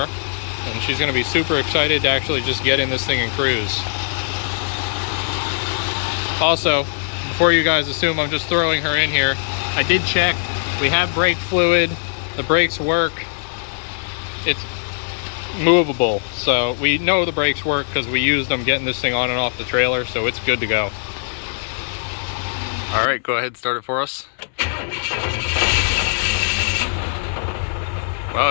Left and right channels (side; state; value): right; silent; digital silence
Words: and she's gonna be super excited to actually just get in this thing and cruise. Also, before you guys assume I'm just throwing her in here, I did check. We have brake fluid. The brakes work. It's movable, so we know the brakes work because we used them getting this thing on and off the trailer, so it's good to go. All right, go ahead and start it for us.